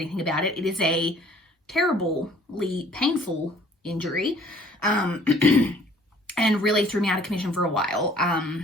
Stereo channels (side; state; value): both; normal; correlation 0.56